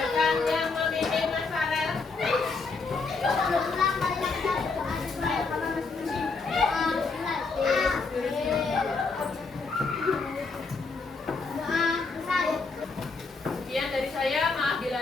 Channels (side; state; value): right; quieter; 4.2 dB